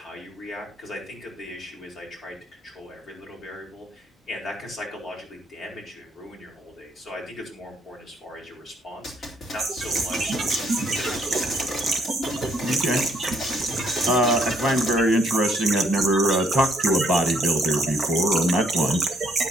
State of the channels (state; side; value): normal; both; correlation 0.68